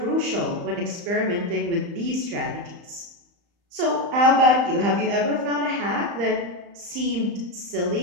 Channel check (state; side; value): late; left; 35 ms